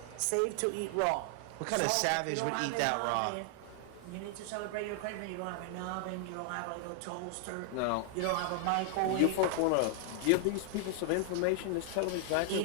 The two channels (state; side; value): different; both; correlation 0.00